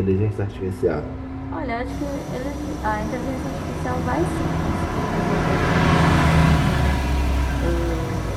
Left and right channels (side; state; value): both; identical; correlation 1.00